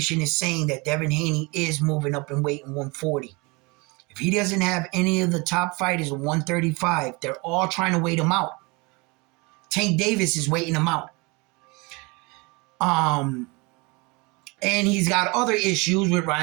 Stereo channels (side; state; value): left; quieter; 27.1 dB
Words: is saying that Devin Haney is moving up in weight in 140. If he doesn't have any of the top fighters in 135, they're all trying to wait him out. Tank Davis is waiting him out. And he's got other issues with